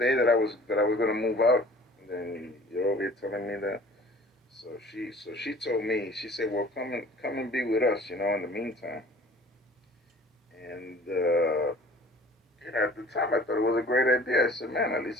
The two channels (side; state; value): both; normal; correlation 0.48